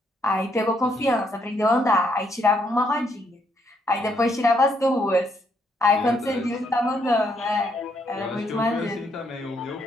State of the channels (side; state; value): both; normal; correlation 0.74